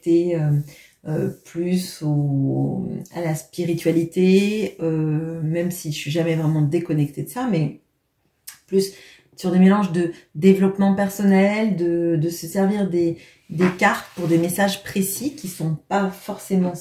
plus à la spiritualité, même si je suis jamais vraiment déconnectée de ça, mais plus sur des mélanges de développement personnel, de se servir des cartes pour des messages précis qui ne sont pas forcément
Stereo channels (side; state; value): both; identical; correlation 1.00